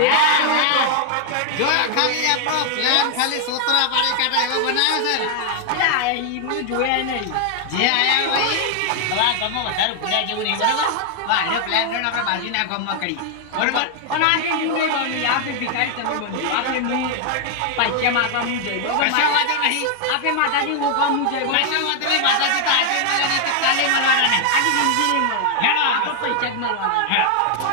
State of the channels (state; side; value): different; both; correlation 0.00